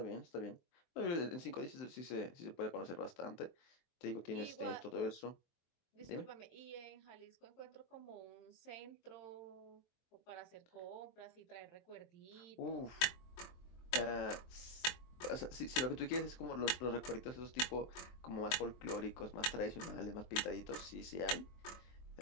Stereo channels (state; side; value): late; right; 23 ms